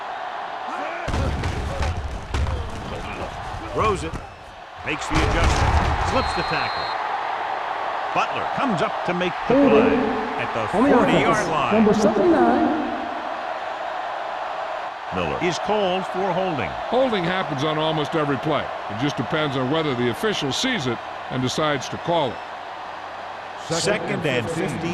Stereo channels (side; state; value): both; identical; correlation 1.00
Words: Throws it. Makes the adjustment. Slips the tackle. Butler comes up to make the play at the 40-yard line. Number 79. Miller is called for holding. Holding happens on almost every play. It just depends on whether the official sees it and decides to call it. Second and